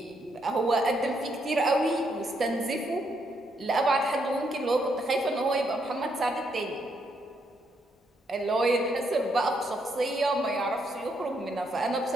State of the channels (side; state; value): both; normal; correlation 0.76